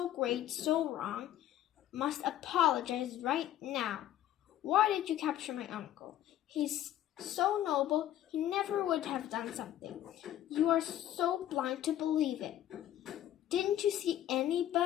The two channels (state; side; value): quieter; right; 12.3 dB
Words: great, so wrong, must apologize right now. Why did you capture my uncle? He's so noble, he never would have done something. You are so blind to believe it. Didn't you see